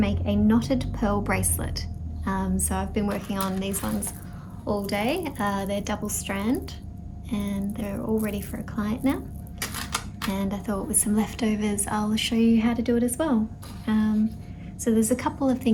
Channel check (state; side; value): identical; both; correlation 1.00